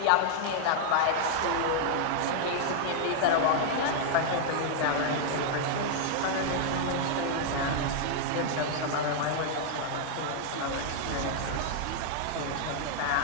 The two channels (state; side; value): different; both; correlation 0.00